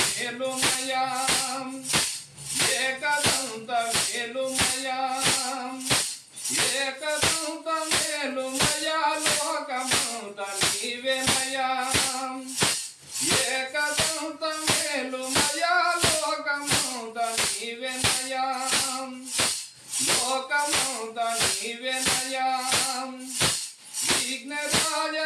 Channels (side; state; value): both; identical; correlation 1.00